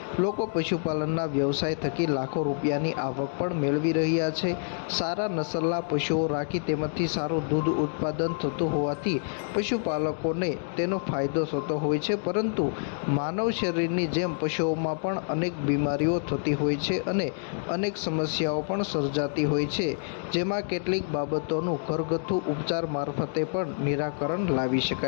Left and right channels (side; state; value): right; silent; digital silence